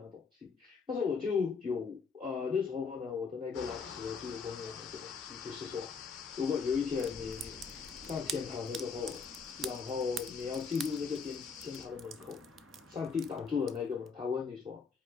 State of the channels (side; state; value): right; quieter; 5.1 dB